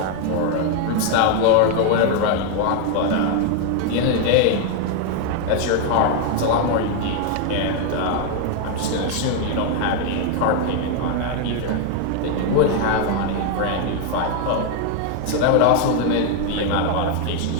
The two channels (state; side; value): different; both; correlation 0.00